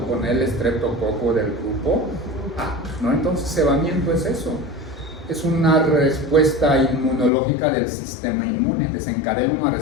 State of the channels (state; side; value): drops out; right; at 7.3 s